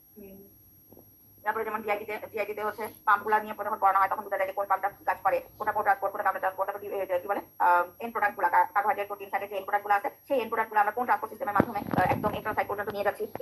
তারপরে যেমন জিআইটিতে হচ্ছে পাম্পগুলো নিয়ে যখন পড়ানো হয় তখন বোঝা যায় যে কোন পাম্পটা কাজ করে, কোনটা ট্রান্সপোর্ট, কোনটা কাউন্টার ট্রান্সপোর্ট, তারপর কি বলে এন্ড প্রোডাক্টগুলো, কার্বোহাইড্রেট, প্রোটিন, ফ্যাটের যে এন্ড প্রোডাক্টগুলো আছে সেই এন্ড প্রোডাক্টগুলো আমরা কোন ট্রান্সপোর্ট সিস্টেমের মাধ্যমে একদম এন্ট্রাল সাইট পর্যন্ত নিয়ে যাচ্ছি,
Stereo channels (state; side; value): identical; both; correlation 1.00